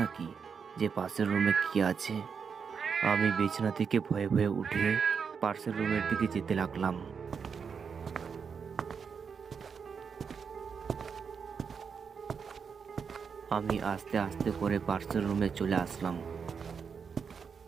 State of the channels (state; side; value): quieter; left; 6.2 dB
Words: নাকি যে পাশের রুমে কি আছে। আমি বিছানা থেকে ভয়ে ভয়ে উঠে পাশের রুমের দিকে যেতে লাগলাম। আমি আস্তে আস্তে করে পাশের রুমে চলে আসলাম।